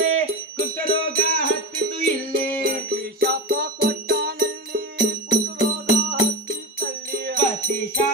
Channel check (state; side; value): normal; both; correlation 0.24